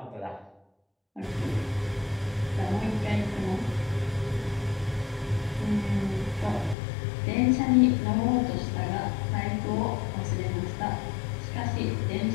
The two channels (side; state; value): right; drops out; at 6.8 s